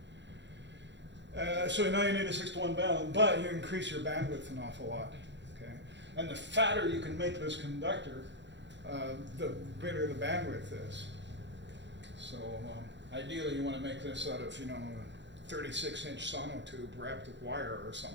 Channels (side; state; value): left; late; 0.52 ms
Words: So now you need a 6-to-1 balun, but you increase your bandwidth an awful lot. Okay, and the fatter you can make this conductor, the bigger the bandwidth is. So ideally, you want to make this out of a 36-inch sonotube wrapped with wire or